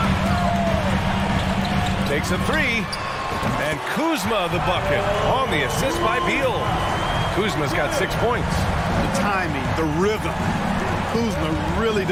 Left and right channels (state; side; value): identical; both; correlation 1.00